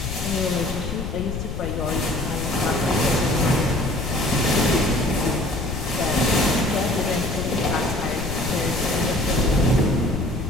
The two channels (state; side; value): noise; left; rumble, 5 dB below the sound